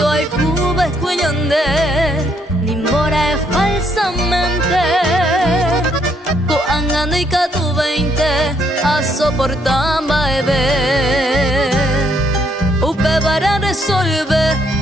hay cuba escuñande Nimbora es falsamente Coangano y catu 20 A soportar baebe Upe para resolver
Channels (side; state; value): both; normal; correlation 0.70